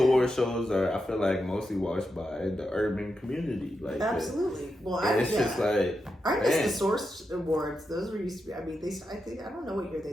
shows are, I feel like, mostly watched by the urban community. Like absolutely. Well, it's just like I miss the Source Awards. Those were used to be. I mean, I don't know what year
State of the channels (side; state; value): both; normal; correlation 0.87